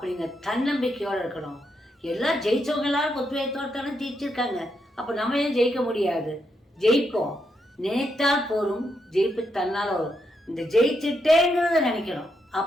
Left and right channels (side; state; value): both; normal; correlation 0.81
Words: தன்னம்பிக்கையோடு இருக்கணும். எல்லாம் ஜெயித்தவங்க எல்லாரும் உத்வேகத்தோடு தானே ஜெயிச்சிருக்காங்க. அப்போ நம்ம ஏன் ஜெயிக்க முடியாது? ஜெயிப்போம். நினைத்தால் போரும், ஜெயிப்பு தன்னால் வரும். இந்த ஜெயிச்சுட்டேங்கிறத நினைக்கணும்,